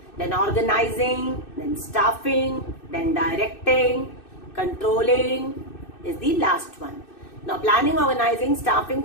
then organizing, then staffing, then directing. Controlling is the last one. Now, planning, organizing, staffing,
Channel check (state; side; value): late; right; 2.6 ms